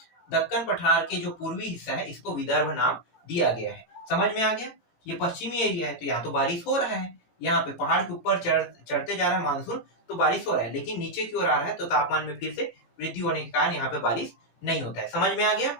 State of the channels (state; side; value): late; right; 17 ms